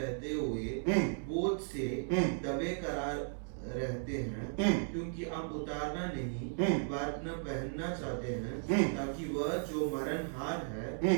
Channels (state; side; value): silent; left; digital silence